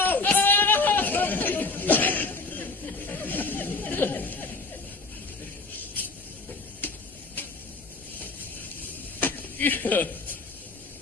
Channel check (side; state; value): right; quieter; 3.8 dB